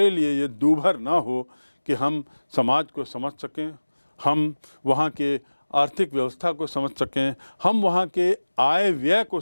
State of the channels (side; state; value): both; inverted; correlation -1.00